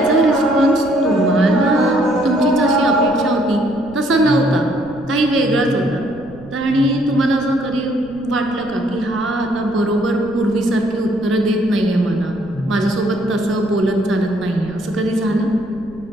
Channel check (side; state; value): right; noise; rumble, 21 dB below the sound